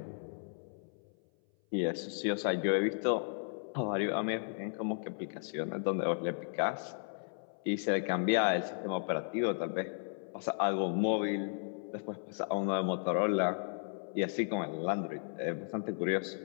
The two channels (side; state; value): right; silent; 55 dB below the other